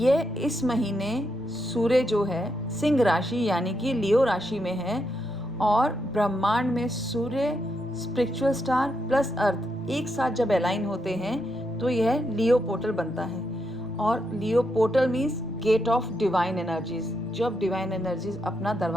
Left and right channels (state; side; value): noise; left; rumble, 25 dB below the sound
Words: इस महीने सूर्य जो है सिंह राशि यानी कि लियो राशि में है, और ब्रह्मांड में सूर्य, स्पिरिचुअल स्टार प्लस अर्थ एक साथ जब अलाइन होते हैं तो यह लियो पोर्टल बनता है। और Leo portal means gate of divine energies, जब डिवाइन एनर्जीज अपना